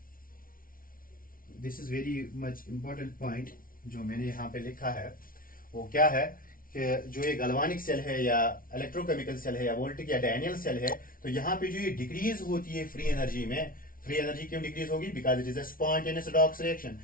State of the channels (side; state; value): right; late; 0.41 ms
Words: This is very much important point जो मैंने यहाँ पे लिखा है। वो क्या है कि जो ये गलवानिक सेल है या इलेक्ट्रोकेमिकल सेल है या वोल्टिक या डैनियल सेल है, तो यहाँ पे जो ये डिक्रीज होती है फ्री एनर्जी में, फ्री एनर्जी क्यों डिक्रीज होगी, because it is a spontaneous redox reaction.